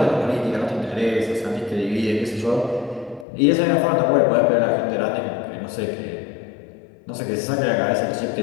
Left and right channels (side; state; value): right; drops out; at 3.2 s